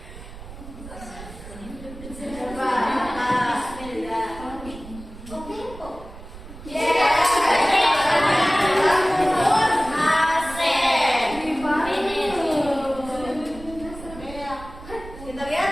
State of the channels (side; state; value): right; noise; rumble, 15 dB below the sound